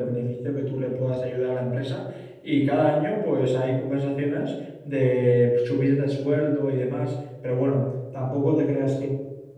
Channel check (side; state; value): both; identical; correlation 1.00